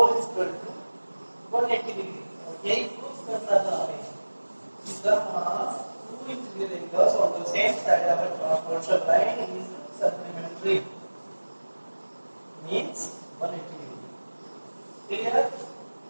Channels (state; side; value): inverted; both; correlation -1.00